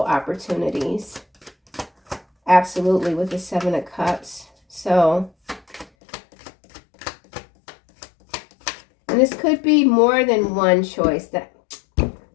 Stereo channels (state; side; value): drops out; right; at 5.9 s